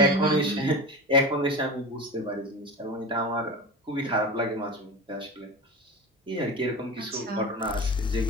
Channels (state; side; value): normal; both; correlation 0.29